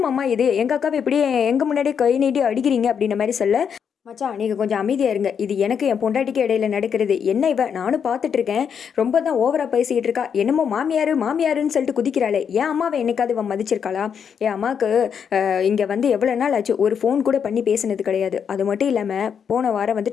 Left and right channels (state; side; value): quieter; right; 7.3 dB